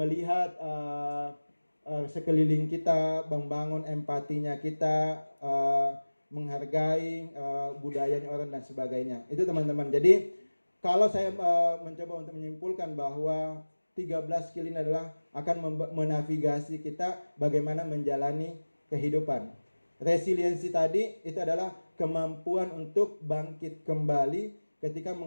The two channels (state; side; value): inverted; both; correlation -1.00